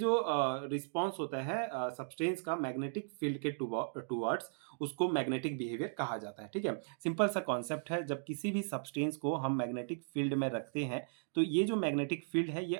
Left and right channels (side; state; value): left; silent; digital silence